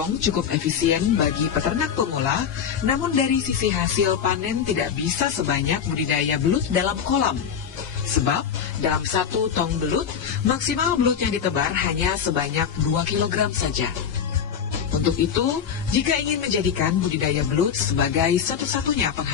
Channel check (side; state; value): right; quieter; 7.7 dB